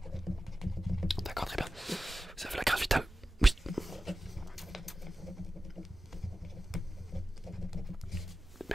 D'accord, très bien. Vous avez la carte vitale? Oui.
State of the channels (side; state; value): both; normal; correlation 0.94